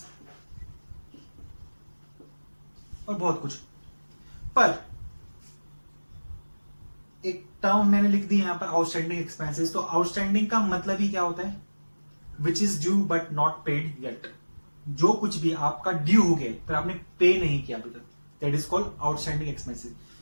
और बहुत कुछ। पर एक टर्म मैंने लिख दी यहां पर आउटस्टैंडिंग एक्सपेंसेस। तो आउटस्टैंडिंग का मतलब ही क्या होता है? Which is due but not paid yet. जो कुछ भी आपका ड्यू हो गया पर आपने पे नहीं किया अभी तक, that is called outstanding expenses.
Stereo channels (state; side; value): inverted; both; correlation -1.00